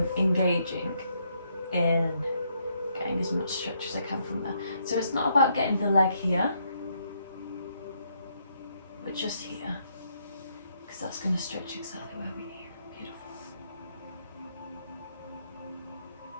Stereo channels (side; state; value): both; inverted; correlation -0.74